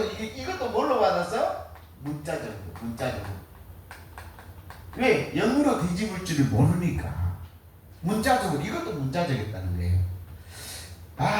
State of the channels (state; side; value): identical; both; correlation 1.00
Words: 이것도 뭘로 받았어? 문자적으로. 왜? 영으로 뒤집을 줄을 모르니까. 문자적으로 이것도 문자적이었다는 거예요.